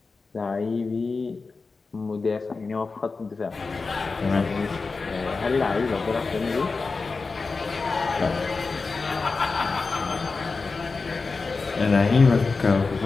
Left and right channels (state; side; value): quieter; right; 4.2 dB